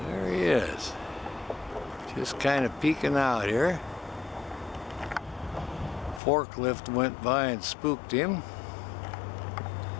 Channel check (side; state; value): right; drops out; at 6.2 s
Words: There he is. Just kind of peeking out here. Forklift went by and spooked him.